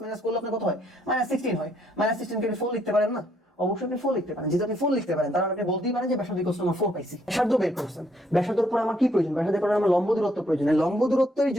মাইনাস করলে আপনার কত হয় -16 হয় -16 কে 4 লিখতে পারেন না অবশ্যই আপনি 4 লিখতে পারেন যেটা আপনি 4 লিখতে পারেন তার মানে আপনি বলতেই পারেন যে ব্যাসার্ধ ইকুয়ালস টু আমার 4 পাইছি ব্যাসার্ধ বের করছেন ব্যাসার্ধের পর আমার কি প্রয়োজন ব্যাসার্ধের পর আমার লম্ব দূরত্ব প্রয়োজন লম্ব দূরত্বের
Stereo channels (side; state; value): both; normal; correlation 0.70